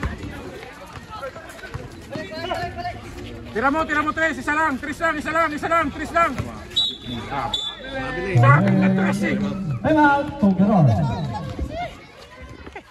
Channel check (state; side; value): identical; both; correlation 1.00